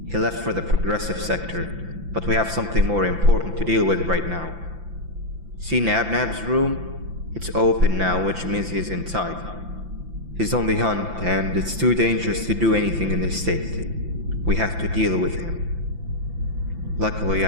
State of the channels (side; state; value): left; late; 5.9 ms